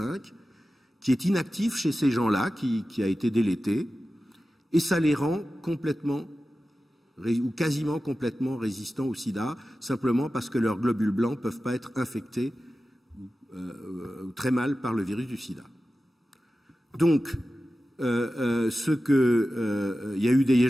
qui est inactif chez ces gens-là, qui a été délété, et ça les rend complètement ou quasiment complètement résistants au sida, simplement parce que leurs globules blancs ne peuvent pas être infectés très mal par le virus du sida. Donc, il y a eu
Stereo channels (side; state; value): both; normal; correlation 0.94